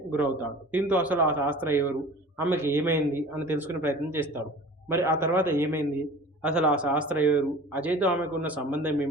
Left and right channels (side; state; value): both; normal; correlation 0.41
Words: గురవుతాడు. దీంతో అసలు ఆ శాస్త్ర ఎవరు, ఆమెకి ఏమైంది అని తెలుసుకునే ప్రయత్నం చేస్తాడు. మరి ఆ తర్వాత ఏమైంది, అసలు ఆ శాస్త్ర ఎవరు, అజయ్తో ఆమెకు ఉన్న సంబంధం